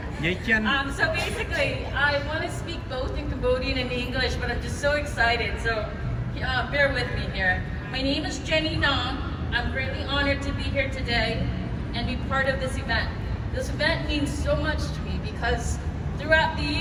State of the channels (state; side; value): identical; both; correlation 1.00